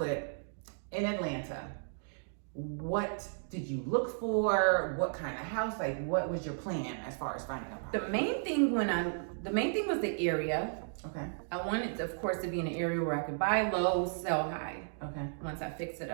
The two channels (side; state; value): left; silent; digital silence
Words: in Atlanta. What did you look for? What kind of house? Like, what was your plan as far as finding a property? The main thing was the area. Okay. I wanted, of course, to be in an area where I could buy low, sell high. Okay. Once I fix it